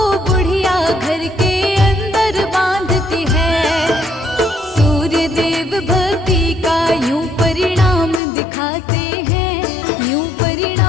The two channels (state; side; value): drops out; right; at 8.2 s